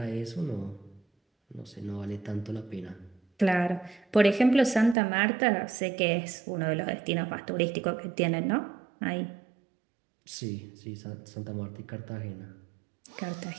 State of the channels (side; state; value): left; drops out; at 5.0 s